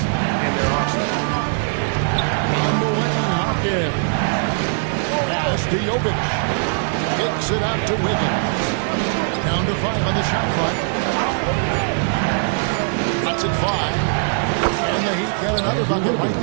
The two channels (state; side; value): silent; left; 65 dB below the other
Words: in their arsenal. On the way, Hawkins. Pass to Jovic. Kicks it out to Wiggins. Down to 5 on the shot clock. Cuts it 5. And the Heat got another bucket right